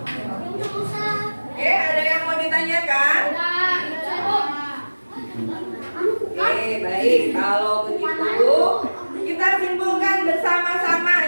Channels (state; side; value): inverted; both; correlation -1.00